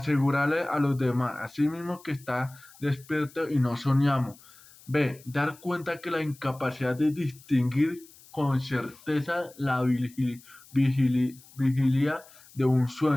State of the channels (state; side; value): noise; left; hiss, 24 dB below the sound